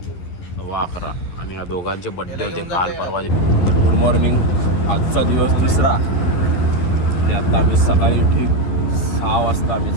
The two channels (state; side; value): late; right; 11 ms